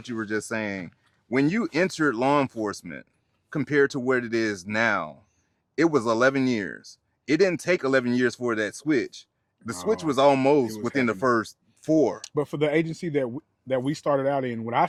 you were just saying, when you entered law enforcement compared to what it is now, it was 11 years. It didn't take 11 years for that switch. The switch No, was almost it was within the happening. first 4. But for the agency that we started out in, when I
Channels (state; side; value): identical; both; correlation 1.00